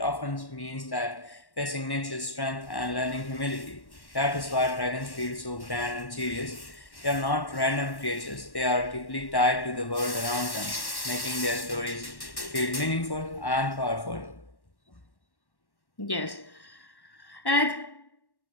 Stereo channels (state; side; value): late; right; 1.1 ms